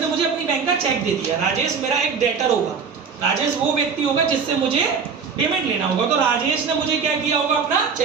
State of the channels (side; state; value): left; quieter; 5.9 dB